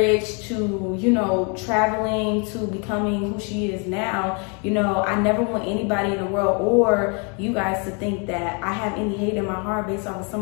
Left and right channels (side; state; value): right; quieter; 35.3 dB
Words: to, traveling to becoming who she is now. I never want anybody in the world or you guys to think that I have any hate in my heart based off of